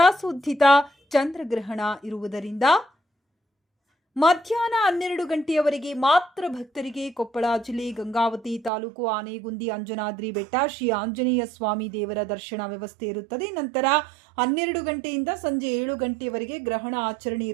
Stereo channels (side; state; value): left; drops out; at 8.7 s